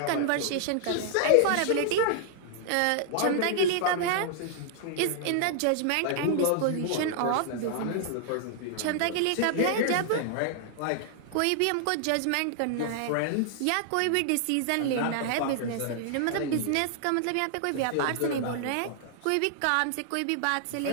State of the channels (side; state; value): both; different; correlation -0.01